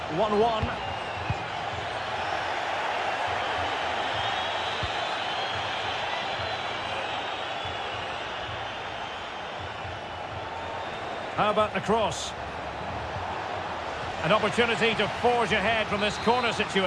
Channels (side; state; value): both; identical; correlation 1.00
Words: 1-1. How about the cross? An opportunity to forge ahead from this corner